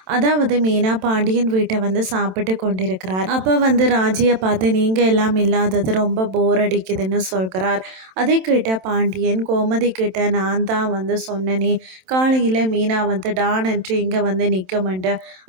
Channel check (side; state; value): left; late; 27 ms